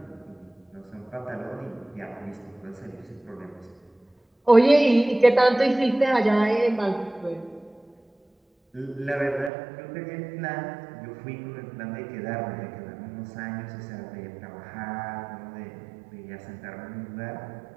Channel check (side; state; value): left; drops out; at 9.5 s